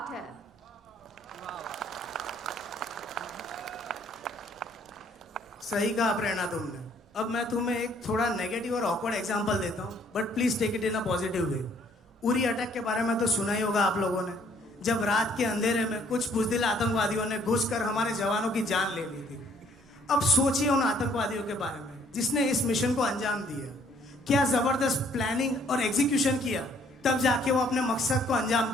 है. सही कहा प्रेरणा तुमने. अब मैं तुम्हें एक थोड़ा नेगेटिव और ऑकवर्ड एग्जांपल देता हूँ, बट प्लीज टेक इट इन अ पॉजिटिव वे। उरी अटैक के बारे में तो सुना ही होगा आप लोगों ने, जब रात के अंधेरे में कुछ बुजदिल आतंकवादियों ने घुसकर हमारे जवानों की जान ले ली थी। अब सोचिए उन आतंकवादियों के बारे में जिसने इस मिशन को अंजाम दिया, क्या जबरदस्त प्लानिंग और एग्जीक्यूशन किया, तब जाके वो अपने मकसद को अंजाम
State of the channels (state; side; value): normal; both; correlation 0.63